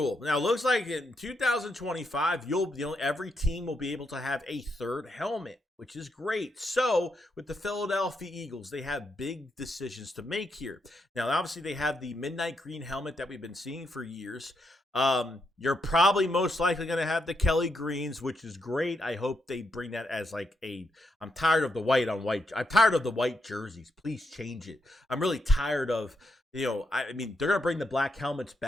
Now, it looks like in 2025, every team will be able to have a third helmet, which is great. So with the Philadelphia Eagles, they have big decisions to make here. Now, obviously, they have the midnight green helmet that we've been seeing for years. You're probably most likely going to have the Kelly greens, which is great. I hope they bring that as I'm tired of the white on white. I'm tired of the white jerseys. Please change it. I'm really tired of, they're going to bring the black helmets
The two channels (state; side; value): normal; both; correlation 0.81